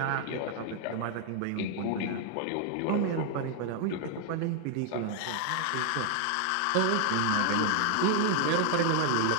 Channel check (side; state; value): both; different; correlation 0.00